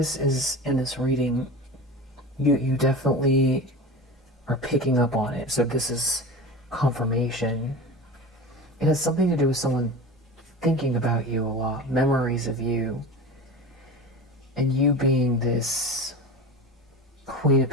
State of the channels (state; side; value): normal; both; correlation 0.31